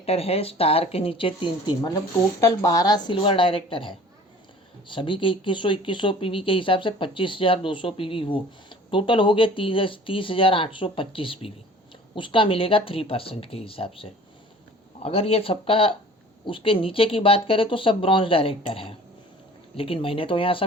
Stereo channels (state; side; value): normal; both; correlation 0.47